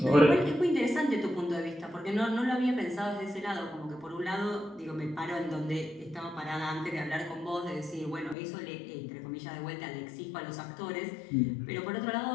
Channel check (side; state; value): right; drops out; at 8.3 s